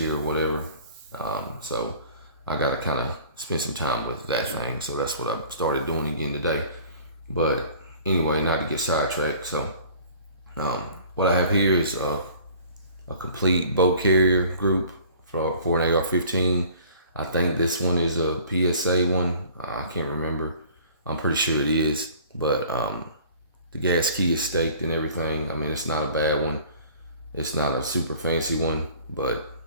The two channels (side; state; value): both; inverted; correlation -0.50